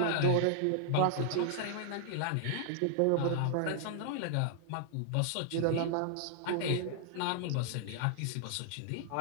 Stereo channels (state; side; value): different; both; correlation -0.01